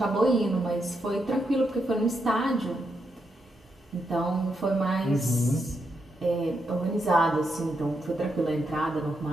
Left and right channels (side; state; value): both; normal; correlation 0.82